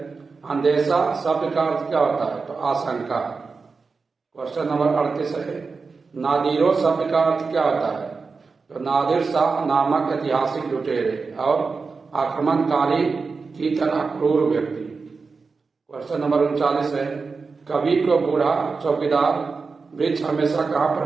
अंदेशा शब्द का अर्थ क्या होता है? तो आशंका। क्वेश्चन नंबर 38 है नादिरों शब्द का अर्थ क्या होता है? तो नादिर शाह नामक ऐतिहासिक लुटेरे और आक्रमणकारी की तरह क्रूर व्यक्ति। क्वेश्चन नंबर 39 है कवि को बूढ़ा चौकीदार वृक्ष हमेशा कहाँ पर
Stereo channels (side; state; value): left; quieter; 4.6 dB